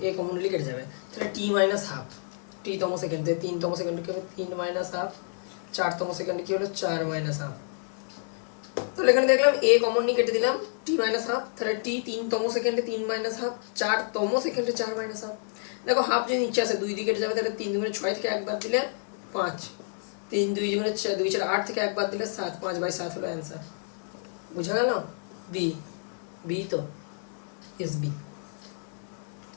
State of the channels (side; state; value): right; silent; 59 dB below the other